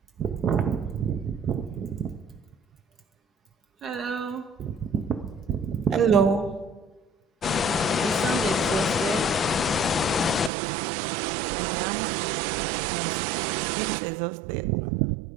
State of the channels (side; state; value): left; drops out; at 10.5 s